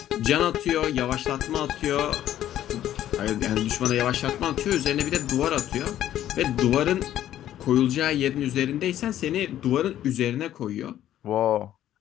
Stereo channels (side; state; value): right; quieter; 12.1 dB